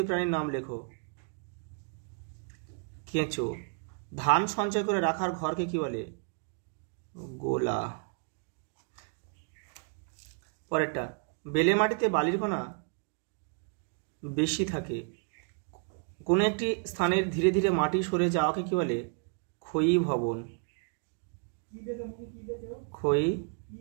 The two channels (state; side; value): quieter; left; 39.0 dB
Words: প্রাণীর নাম লেখো। কেঁচো। ধান সঞ্চয় করে রাখার ঘরকে কি বলে? গোলা। পরেরটা, বেলে মাটিতে বালির কণা বেশি থাকে। কোনো একটি স্থানের ধীরে ধীরে মাটি সরে যাওয়াকে কি বলে? ক্ষয়ী ভবন।